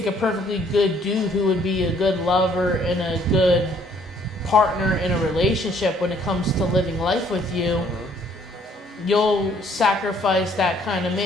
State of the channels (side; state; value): both; normal; correlation 0.63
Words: a perfectly good dude who would be a good lover and a good partner in a relationship when it comes to living life with you. You'll sacrifice that kind of